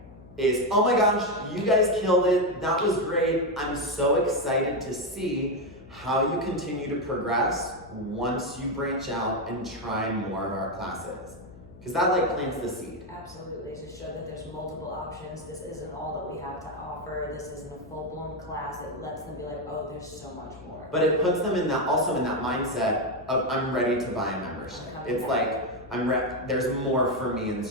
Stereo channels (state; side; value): noise; left; hum, 20 dB below the sound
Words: is, oh my gosh, you guys killed it. That was great. I'm so excited to see how you continue to progress once you branch out and try more of our classes. Because that plants the seed. Absolutely, to show that there's multiple options. This isn't all that we have to offer. This isn't a full-blown class. It lets them be like, oh, there's so much more. But it puts them in that mindset of, I'm ready to buy a membership. It's like, there's more for me in